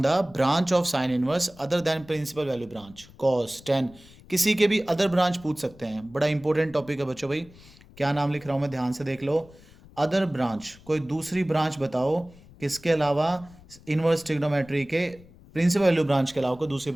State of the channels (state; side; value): noise; left; rumble, 23 dB below the sound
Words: the branch of sine inverse other than principal value branch, cos 10, किसी के भी अदर ब्रांच पूछ सकते हैं। बड़ा इंपॉर्टेंट टॉपिक है बच्चों भाई, क्या नाम लिख रहा हूं मैं, ध्यान से देख लो। अदर ब्रांच, कोई दूसरी ब्रांच बताओ किसके अलावा, इनवर्स ट्रिग्नोमेट्री के प्रिंसिपल वैल्यू ब्रांच के अलावा कोई दूसरी